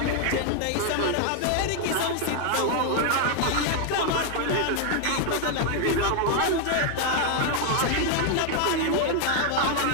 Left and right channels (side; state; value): both; different; correlation 0.00